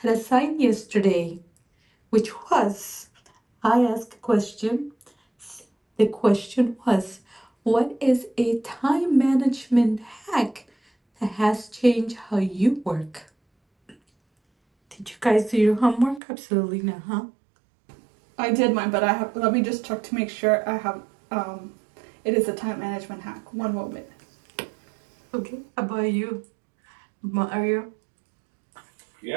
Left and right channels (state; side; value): drops out; left; at 16.2 s